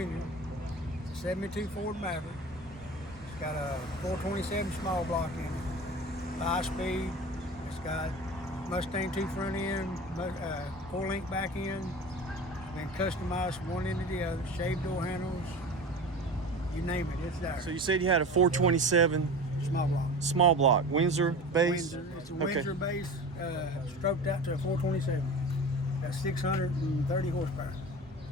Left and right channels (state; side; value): normal; both; correlation 0.34